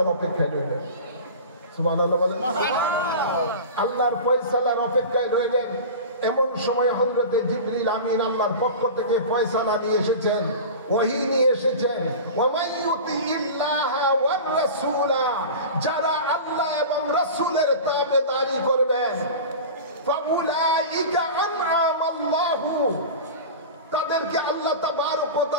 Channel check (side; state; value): both; inverted; correlation -0.32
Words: অপেক্ষায় রইলেন। সুবহানাল্লাহ বলেন। আল্লাহর ফয়সালার অপেক্ষায় রইলেন। এমন সময় হযরতে জিবরিল আমিন আল্লাহর পক্ষ থেকে ফয়সালা নিয়ে এসেছেন, ওহী নিয়ে এসেছেন। ওয়ামান ইউতিইল্লাহা ওয়ার রাসূলা, যারা আল্লাহ এবং রাসূলের তাবেদারি করবেন, ফাউলাইকা আনআমাল্লাহু, তাদেরকে আল্লাহ তাবারক ওয়া